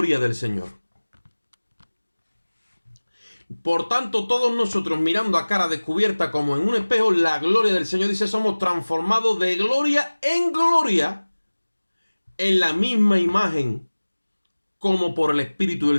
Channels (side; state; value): both; inverted; correlation -1.00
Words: del Señor. Por tanto, todos nosotros, mirando a cara descubierta como en un espejo, la gloria del Señor, dice, somos transformados de gloria en gloria en la misma imagen como por el Espíritu